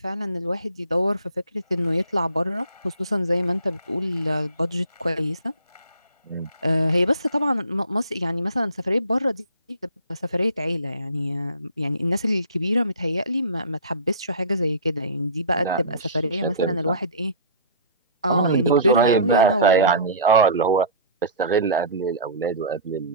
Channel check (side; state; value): both; inverted; correlation -0.40